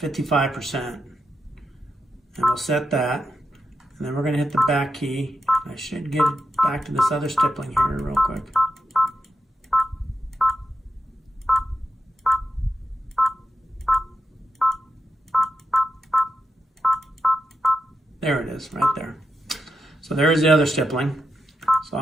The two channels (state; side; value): normal; both; correlation 0.87